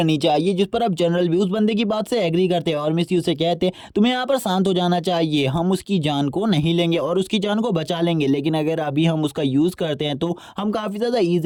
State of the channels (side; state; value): both; identical; correlation 1.00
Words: चाहिए। जिस पर अब जनरल भी उस बंदे की बात से एग्री करते हैं और मिस यू से कहते हैं तुम्हें यहाँ पर शांत हो जाना चाहिए, हम उसकी जान को नहीं लेंगे और उसकी जान को बचा लेंगे, लेकिन अगर अभी हम उसका यूज़ करते हैं तो हम काफ़ी ज़्यादा